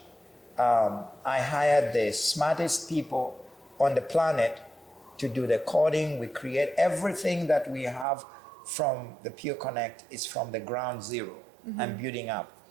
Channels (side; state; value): left; drops out; at 8.1 s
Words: I hired the smartest people on the planet to do the coding. We create everything that we have from the Pure Connect is from the ground zero and building up.